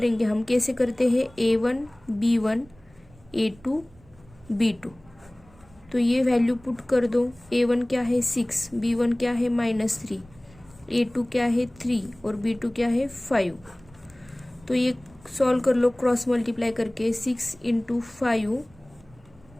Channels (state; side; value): noise; right; rumble, 26 dB below the sound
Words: हम, कैसे करते हैं, a1 b1 a2 b2। तो ये वैल्यू पुट कर दो। a1 क्या है 6, b1 क्या है -3, a2 क्या है 3 और b2 क्या है 5। तो ये सॉल्व कर लो क्रॉस मल्टीप्लाई करके। 6 इंटू 5